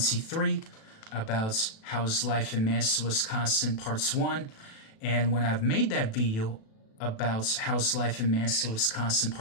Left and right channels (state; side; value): late; right; 36 ms